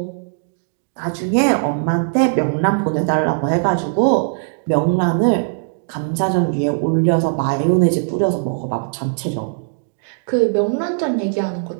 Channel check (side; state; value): left; silent; digital silence